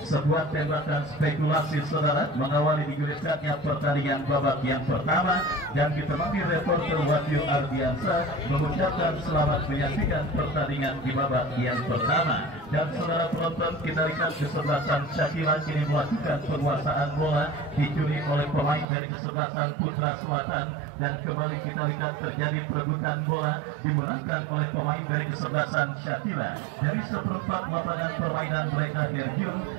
Sebuah tembakan spekulasi saudara mengawali digulirkannya pertandingan babak yang pertama, dan ditemani reporter Wahyu Ardiansa mengucapkan selamat menyaksikan pertandingan di babak yang pertama. Dan saudara penonton, kita lihat kesebelasan Syakila kini melakukan penguasaan bola, dicuri oleh pemain dari kesebelasan Putra Selatan, dan kembali kita lihat terjadi perebutan bola dimenangkan oleh pemain dari kesebelasan Syakila. Dari seperempat lapangan permainan mereka Derjun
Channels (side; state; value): left; drops out; at 18.9 s